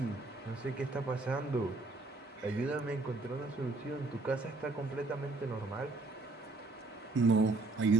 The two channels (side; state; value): left; quieter; 3.3 dB